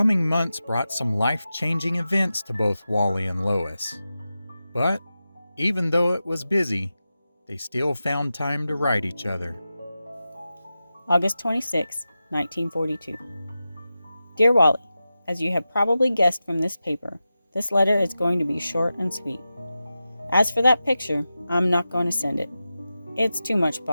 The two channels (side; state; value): both; inverted; correlation -0.92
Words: months brought some life-changing events to both Wally and Lois. But even though it was busy, they still found time to write each other. August 26, 1942. Dear Wally, as you have probably guessed from this paper, this letter is going to be short and sweet. As for that picture, I'm not going to send it. It's too much